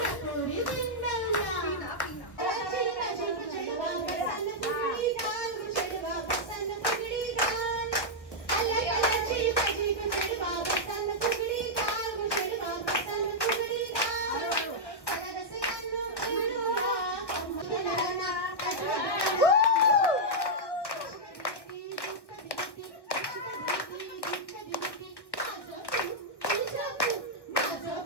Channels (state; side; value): late; right; 1.3 ms